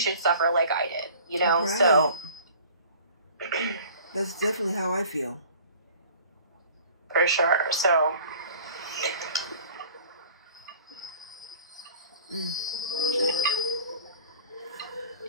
suffer like I did, Right. So that's definitely how I feel. For sure. So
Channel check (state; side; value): inverted; both; correlation -0.47